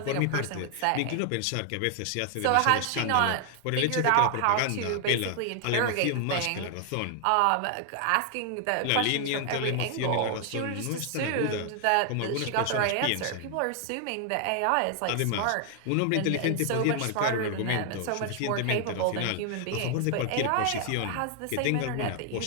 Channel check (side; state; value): both; different; correlation 0.00